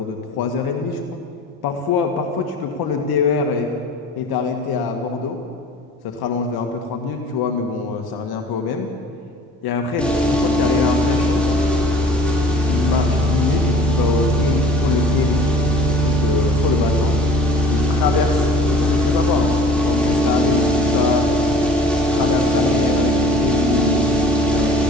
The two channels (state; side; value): normal; both; correlation 0.47